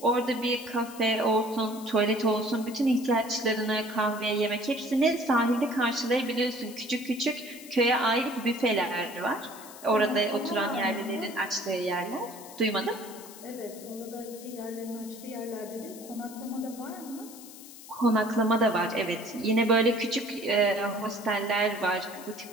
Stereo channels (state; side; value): noise; left; hiss, 17 dB below the sound